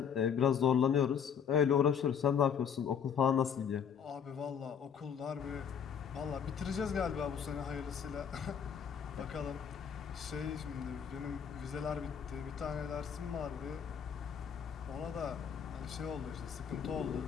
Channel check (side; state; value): right; quieter; 7.6 dB